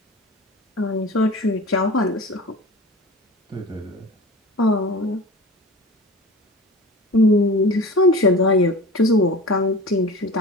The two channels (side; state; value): both; normal; correlation 0.35